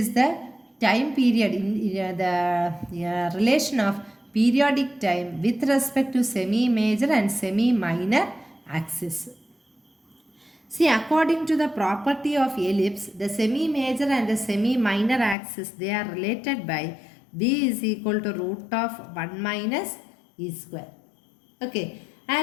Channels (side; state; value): right; drops out; at 15.4 s